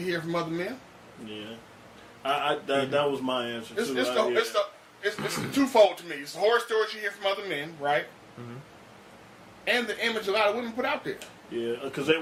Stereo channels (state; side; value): identical; both; correlation 1.00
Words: hear from other men. Yeah. That was my answer It's, too. it's twofold to me. It's the horror stories you hear from other men, right? And the image a lot of women put out there. Yeah, because